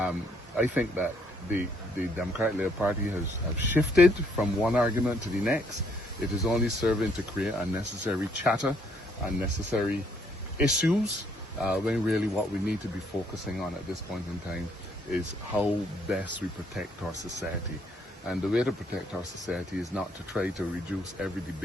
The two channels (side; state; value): both; normal; correlation 0.68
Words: think that the Democratic Labour Party has shifted from one argument to the next. It is only serving to create unnecessary chatter, unnecessary issues, when really what we need to be focusing on at this point in time is how best we protect our society. And the way to protect our society is not to try to reduce every